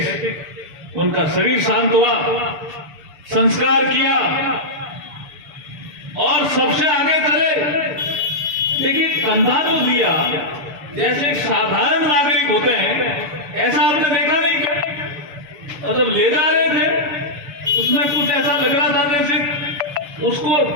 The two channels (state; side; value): late; left; 6.9 ms